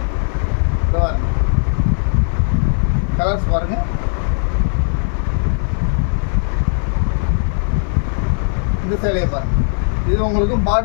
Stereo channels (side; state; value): right; silent; 60 dB below the other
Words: கலர்ஸ் பாருங்கள். இந்த சேலையை பாருங்கள். இது உங்களுக்கு